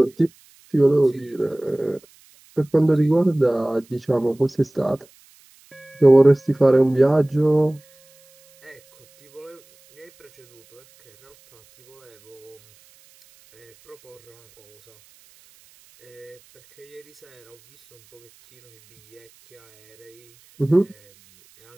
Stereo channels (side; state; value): right; noise; hiss, 30 dB below the sound